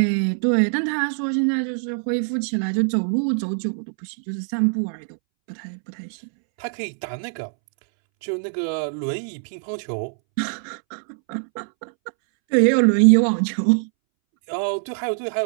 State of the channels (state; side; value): silent; left; 63 dB below the other